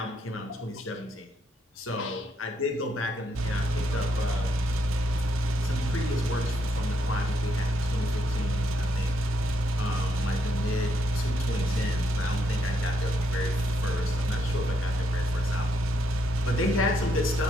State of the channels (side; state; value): both; normal; correlation 0.76